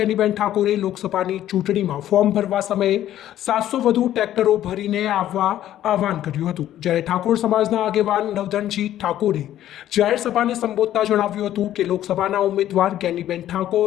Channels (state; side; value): quieter; right; 12.3 dB